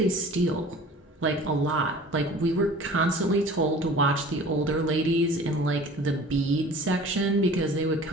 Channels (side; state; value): both; normal; correlation 0.44